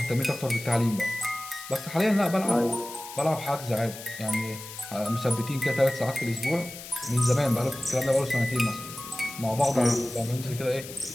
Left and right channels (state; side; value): noise; left; hiss, 13 dB below the sound